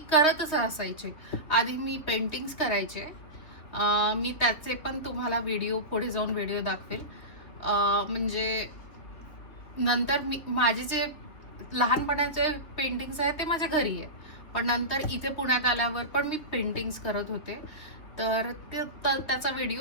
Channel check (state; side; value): late; right; 3.4 ms